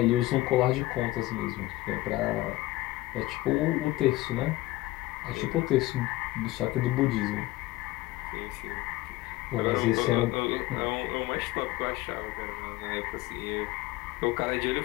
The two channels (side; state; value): right; quieter; 18.2 dB